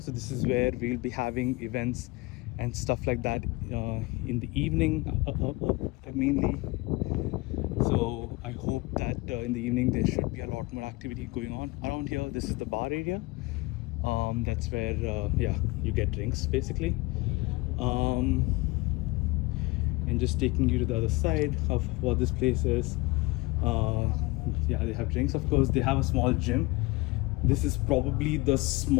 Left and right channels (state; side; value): quieter; right; 23.2 dB